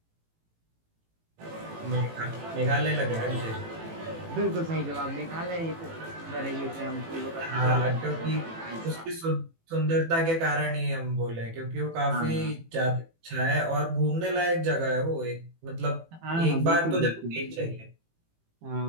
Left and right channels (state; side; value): late; left; 18 ms